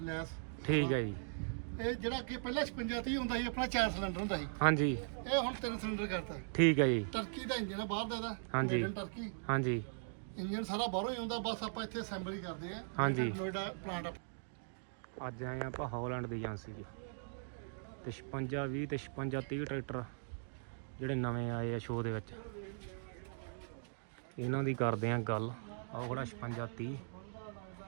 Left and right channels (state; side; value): silent; left; digital silence